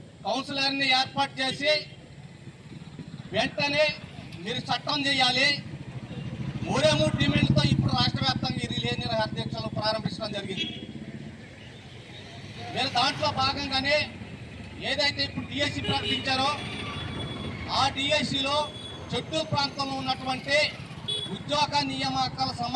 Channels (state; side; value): identical; both; correlation 1.00